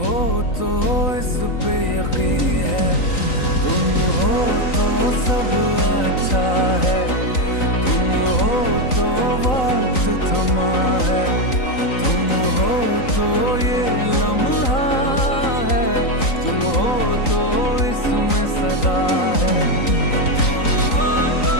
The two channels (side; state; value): right; late; 3.9 ms